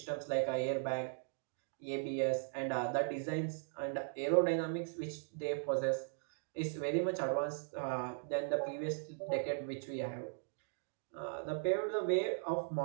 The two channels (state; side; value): silent; left; digital silence